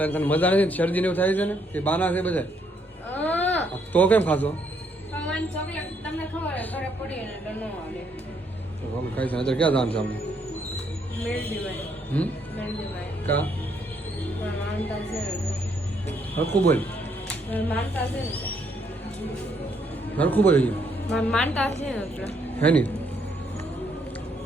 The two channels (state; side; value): normal; both; correlation 0.72